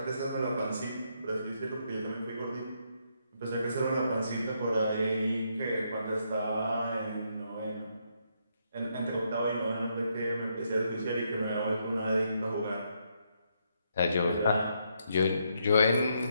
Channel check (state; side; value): inverted; both; correlation -0.77